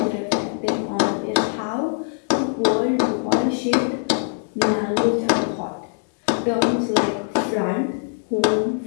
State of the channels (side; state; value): right; silent; digital silence